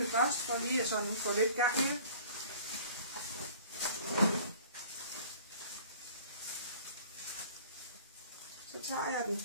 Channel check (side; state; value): both; inverted; correlation -0.48